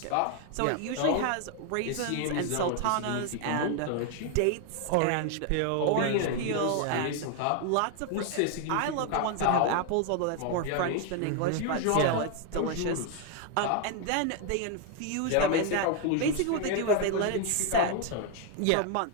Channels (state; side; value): different; both; correlation 0.01